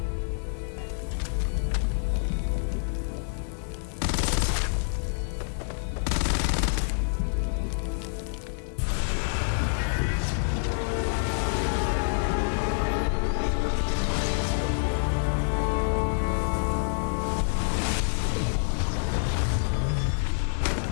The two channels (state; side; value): silent; right; digital silence